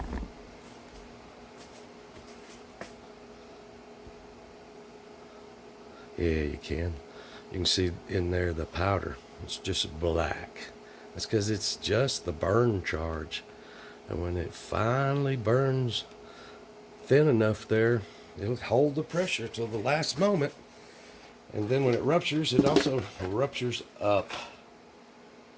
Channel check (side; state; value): both; identical; correlation 1.00